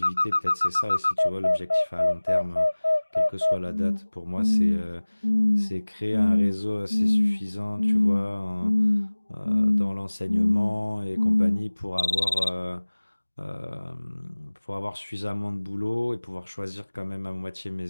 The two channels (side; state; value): both; inverted; correlation -1.00